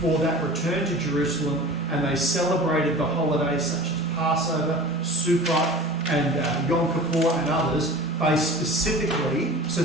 that return to Jerusalem, and they celebrated the holidays such as Passover, Sukkot, and Yom Kippur and others based specifically. So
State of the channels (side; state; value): both; normal; correlation 0.39